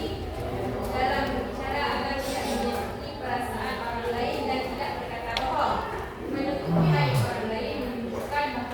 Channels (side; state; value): both; identical; correlation 1.00